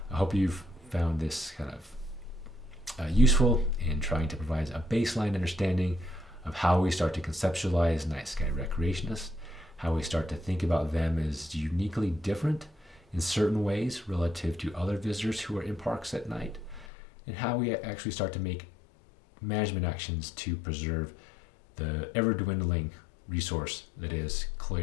I hope you've found this kind of useful in trying to provide a baseline understanding of how we start to conceptualize night sky recreationists, how we start to think about them as uniquely different in certain ways relative to other visitors who are in parks at night, and how we actually start to make management actions to preserve the ever-dwindling resource that is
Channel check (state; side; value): drops out; right; at 16.9 s